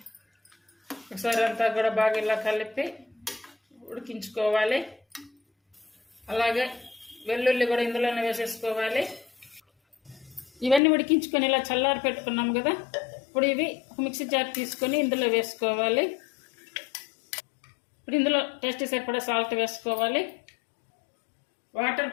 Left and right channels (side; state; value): right; drops out; at 10.8 s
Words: ఒకసారి అంతా కూడా బాగా ఇలా కలిపి ఉడికించుకోవాలి. అలాగే వెల్లుల్లి కూడా ఇందులోనే వేసేసుకోవాలి. ఇవన్నీ ఉడికించుకొని ఇలా చల్లారి పెట్టుకున్నాం కదా, ఇప్పుడు ఇవి ఒక మిక్సీ జార్ తీసుకొని ఇందులో వేసుకోవాలి. ఇప్పుడు ఇందులో టేస్ట్ సరిపడా సాల్ట్ వేసుకోవాలి. వాటర్